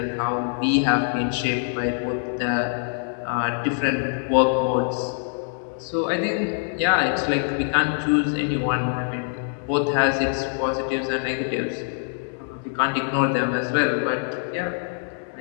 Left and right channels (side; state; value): right; silent; 59 dB below the other